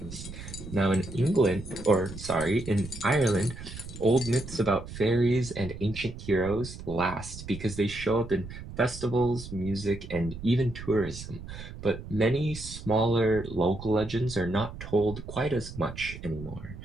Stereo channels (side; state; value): right; noise; rumble, 12 dB below the sound